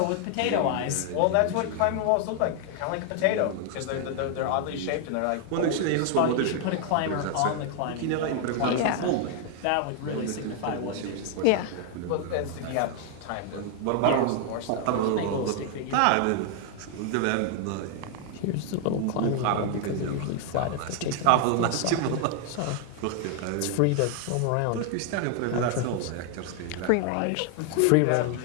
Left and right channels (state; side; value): different; both; correlation 0.00